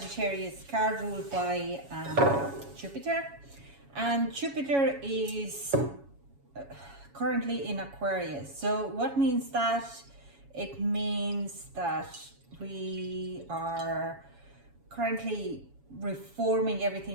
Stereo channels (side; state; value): left; late; 7.2 ms